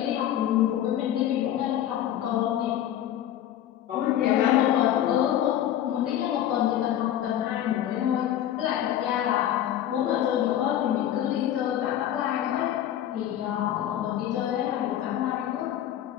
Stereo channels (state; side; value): quieter; right; 11.4 dB